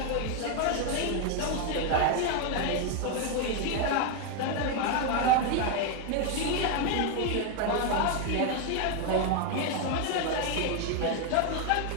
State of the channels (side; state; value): both; different; correlation 0.01